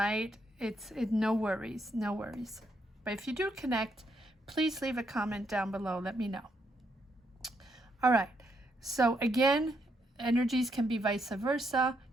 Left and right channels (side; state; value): both; normal; correlation 0.77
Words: It's no worries, no worries. But if you do connect, please leave a comment down below. Let me know. All right. So again, energies can be vice versa.